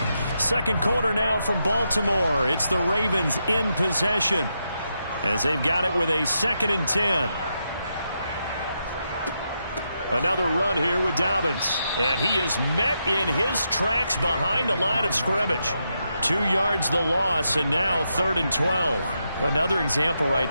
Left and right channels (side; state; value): both; inverted; correlation -0.83